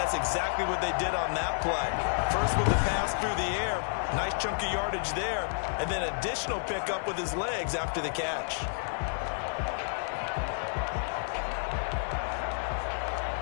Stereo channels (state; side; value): silent; right; digital silence